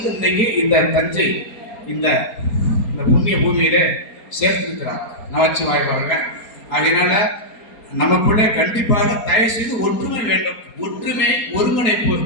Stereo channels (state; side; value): late; right; 4.3 ms